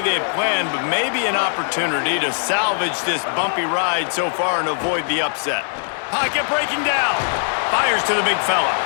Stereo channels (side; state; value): right; silent; digital silence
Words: they had planned, but maybe an opportunity to salvage this bumpy ride so far and avoid the upset. Pocket breaking down. Fires to the big fella.